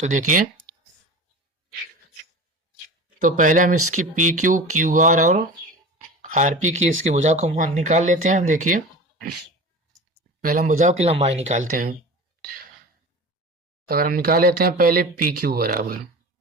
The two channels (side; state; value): both; normal; correlation 0.34